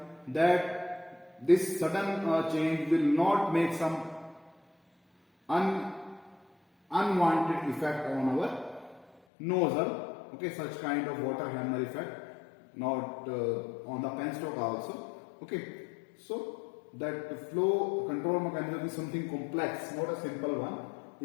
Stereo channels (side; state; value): right; drops out; at 9.2 s